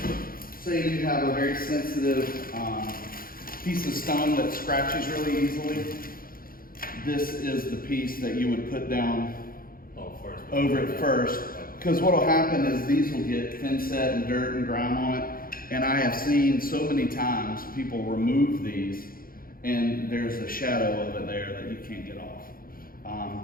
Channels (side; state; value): right; late; 0.42 ms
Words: Say you have a very sensitive piece of stone that scratches really easily. This is the piece that you would put down over it first. Because what will happen is these will get thin set and dirt and grime on it. And I have seen so many times people remove these and there's a shadow of it there that you can't get off.